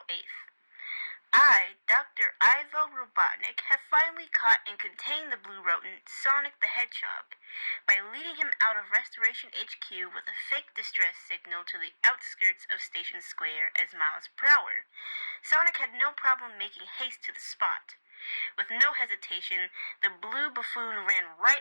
8th. I, Dr. Ivo Robotnik, have finally caught and contained the blue rodent, Sonic the Hedgehog, by leading him out of Restoration HQ with a fake distress signal to the outskirts of Station Square as miles per hour. Sonic had no problem making haste to the spot. With no hesitation, the blue buffoon ran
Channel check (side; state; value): both; inverted; correlation -1.00